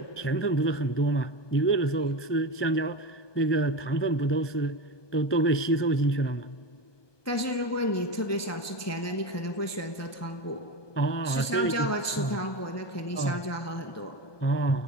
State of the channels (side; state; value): right; late; 1.2 ms